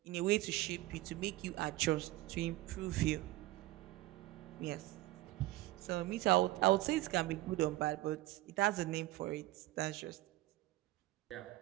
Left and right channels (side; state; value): left; quieter; 17.6 dB